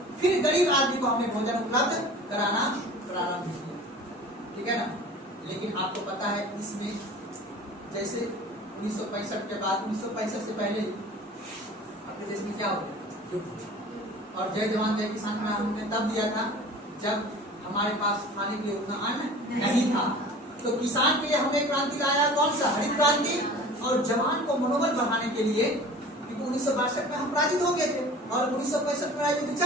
फिर गरीब आदमी को हमने भोजन उपलब्ध कराना प्रारंभ किया। ठीक है ना? लेकिन आपको पता है इसमें जैसे 1965 के बाद, 1965 से पहले अपने देश में क्या हो गया? और जय जवान जय किसान का हमने तब दिया था जब हमारे पास खाने के लिए उतना अन्न नहीं था। तो किसान के लिए हमने क्रांति लाया, कौन सा? हरित क्रांति। और जवान को मनोबल बढ़ाने के लिए, क्योंकि 1962 में हम पराजित हो गए थे और 1965 में युद्ध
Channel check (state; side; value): normal; both; correlation 0.42